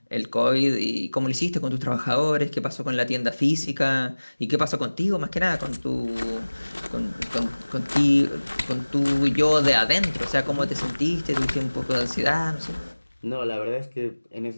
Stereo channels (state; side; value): inverted; both; correlation -1.00